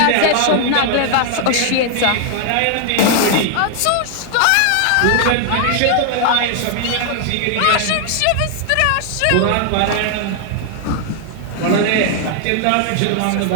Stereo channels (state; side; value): different; both; correlation 0.00